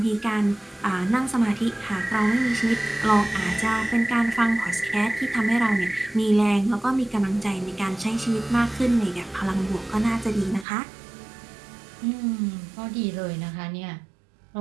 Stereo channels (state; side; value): drops out; left; at 10.7 s